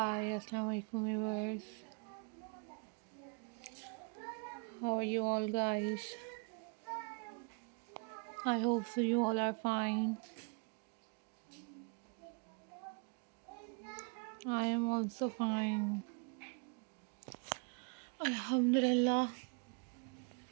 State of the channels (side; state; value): left; quieter; 33.3 dB